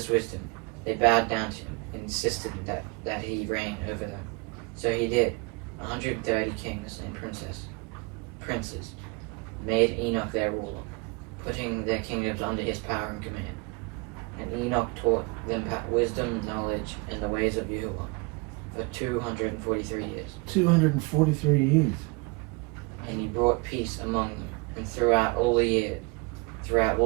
wisdom, they bowed down to him and insisted that he reign over them. So he did. 130 kings and princes made Enoch their ruler, putting their kingdoms under his power and command. And Enoch taught them wisdom, knowledge, and the ways of Yahuwah for 243 years. 243 years. And he brought peace among them, and throughout all the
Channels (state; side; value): quieter; left; 28.5 dB